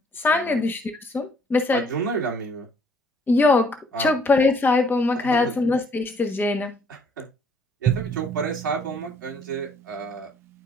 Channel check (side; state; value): both; normal; correlation 0.63